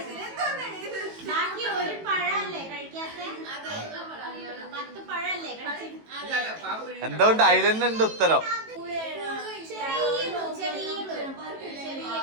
ബാക്കി ഒരു പഴല്ലേ കഴിക്കാത്ത 10 പഴല്ലേ എന്തുകൊണ്ട് അതിലെന്നെ ഉണ്ട് ഉത്തരം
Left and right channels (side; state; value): left; late; 18 ms